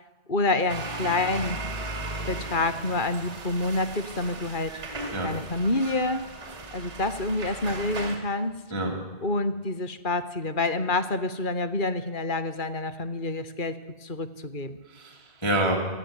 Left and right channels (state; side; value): late; right; 2.4 ms